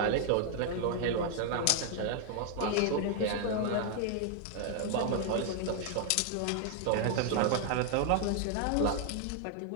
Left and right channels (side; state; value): both; different; correlation 0.00